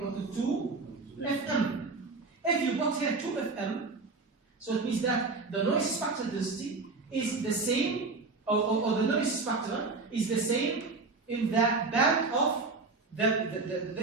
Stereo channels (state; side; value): quieter; left; 3.9 dB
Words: to 2 Fm. If you put here 2 Fm, so it means that the noise spectral density is the same, or the noise spectrum is the same in the band of